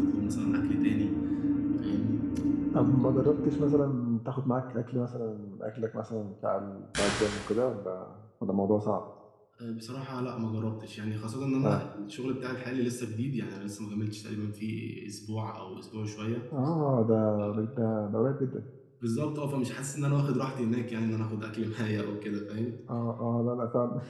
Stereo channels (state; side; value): identical; both; correlation 1.00